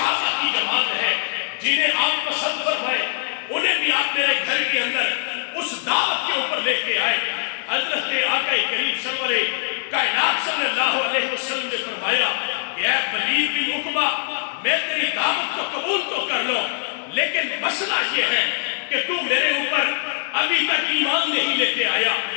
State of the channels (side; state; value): right; silent; digital silence